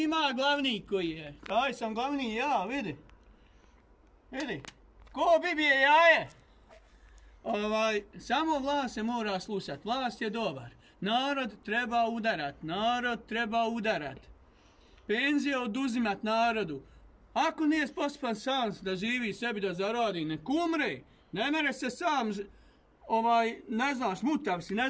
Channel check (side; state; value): both; identical; correlation 1.00